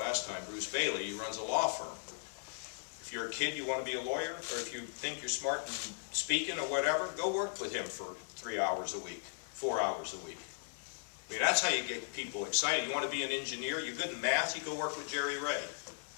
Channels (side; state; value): right; silent; 53 dB below the other